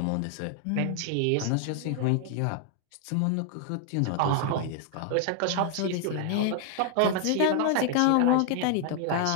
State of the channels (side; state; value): both; different; correlation 0.00